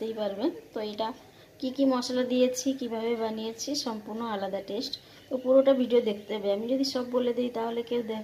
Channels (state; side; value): identical; both; correlation 1.00